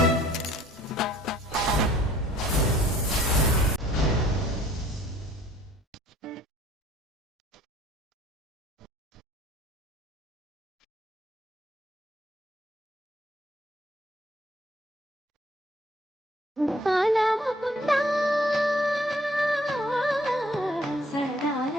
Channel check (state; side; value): normal; both; correlation 0.58